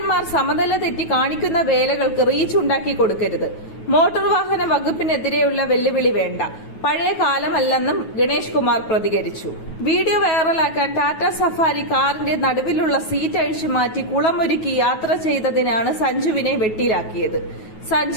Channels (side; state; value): right; late; 9.3 ms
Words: സമനില തെറ്റി കാണിക്കുന്ന വേലകൾക്ക് റീച്ച് ഉണ്ടാക്കി കൊടുക്കരുത്. മോട്ടോർ വാഹന വകുപ്പിനെതിരെയുള്ള വെല്ലുവിളി വേണ്ട, പഴയ കാലമല്ലെന്നും ഗണേഷ് കുമാർ പ്രതികരിച്ചു. വീഡിയോ വൈറലാക്കാൻ ടാറ്റ സഫാരി കാറിന്റെ നടുവിലുള്ള സീറ്റ് അഴിച്ചു മാറ്റി കുളമൊരുക്കി യാത്ര ചെയ്തതിനാണ് സഞ്ജുവിനെ വെട്ടിലാക്കിയത്.